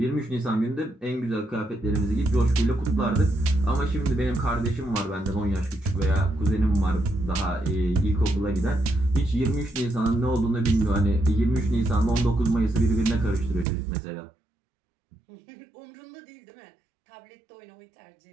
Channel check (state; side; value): drops out; left; at 13.7 s